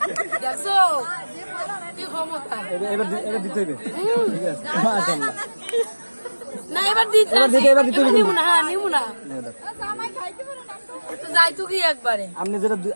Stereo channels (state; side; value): inverted; both; correlation -1.00